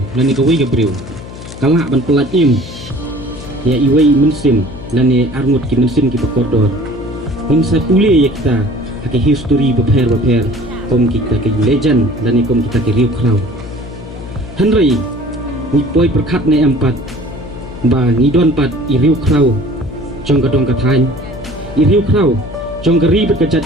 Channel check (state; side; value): noise; left; hum, 13 dB below the sound